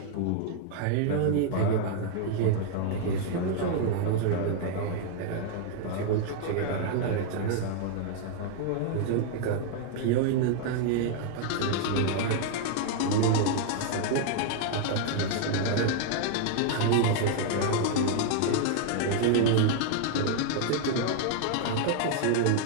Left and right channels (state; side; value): different; both; correlation 0.00